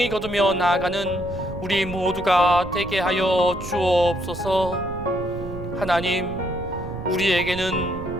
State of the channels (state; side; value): noise; right; rumble, 11 dB below the sound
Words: 거두며 나아가는 우리 모두가 되게 하여 주옵소서. 하나님,